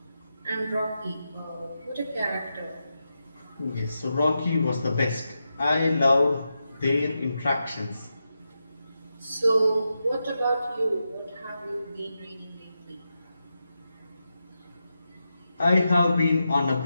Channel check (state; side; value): inverted; both; correlation -0.88